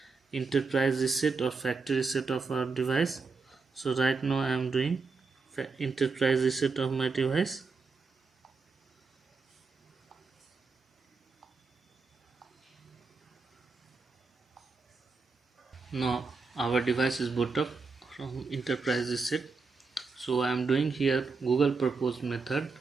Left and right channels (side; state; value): left; quieter; 4.4 dB